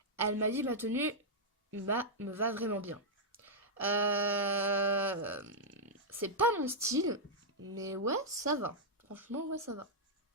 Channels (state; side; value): normal; both; correlation -0.06